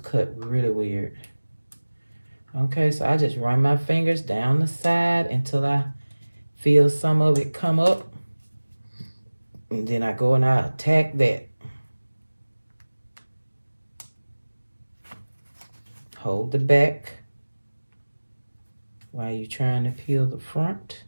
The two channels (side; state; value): both; inverted; correlation -1.00